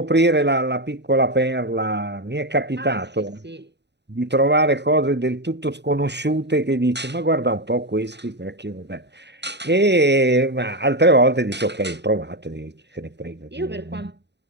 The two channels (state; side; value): late; left; 0.50 ms